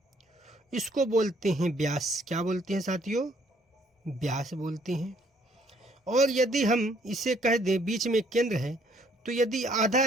इसको बोलते हैं व्यास। क्या बोलते हैं साथियों? व्यास बोलते हैं। और यदि हम इसे कह दें बीच में केंद्र है, तो यदि आधा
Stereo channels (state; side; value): normal; both; correlation 0.64